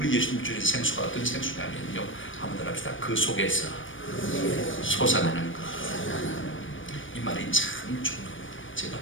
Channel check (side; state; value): right; late; 0.57 ms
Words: 예수님 주신 생수가 어떤 생수냐면요, 한번 더 합시다. 그 속에서 솟아나는 것. 이 말이 참 중요합니다. 제가